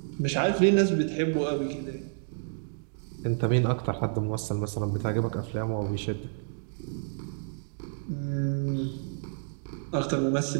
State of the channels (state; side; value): silent; left; digital silence